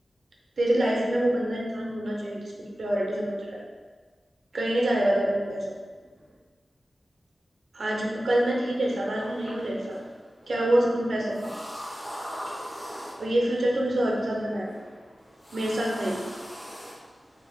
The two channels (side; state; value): both; normal; correlation 0.94